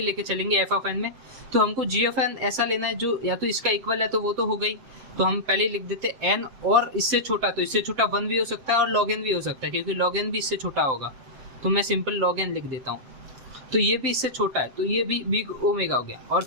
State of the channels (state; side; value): late; left; 7.9 ms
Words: लेके चलेंगे एफ ऑफ एन में, तो हमको जी ऑफ एन ऐसा लेना है जो या तो इसका इक्वल है, तो वो तो हो गई, तो हम पहले ही लिख देते एन, और इससे छोटा, तो इससे छोटा 1 भी हो सकता है और लॉग एन भी हो सकता है, क्योंकि लॉग एन भी इससे छोटा होगा, तो मैं सिंपल लॉग एन लिख देता हूँ। तो ये भी इससे छोटा है, तो ये भी बिग ओमेगा हो गया। और